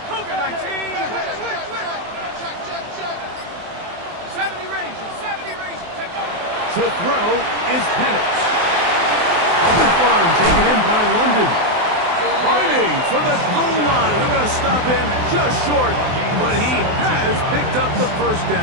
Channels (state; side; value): late; left; 23 ms